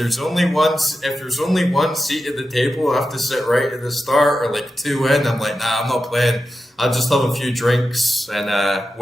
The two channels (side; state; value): both; normal; correlation 0.90